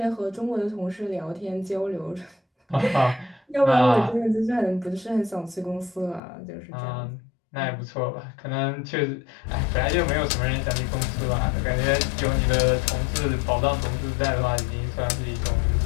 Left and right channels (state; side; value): drops out; right; at 6.2 s